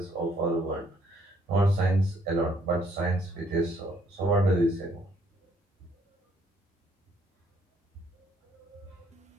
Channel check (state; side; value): normal; both; correlation 0.67